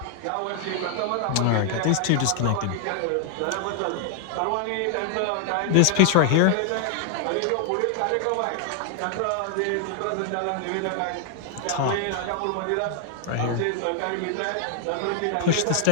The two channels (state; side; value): different; both; correlation 0.00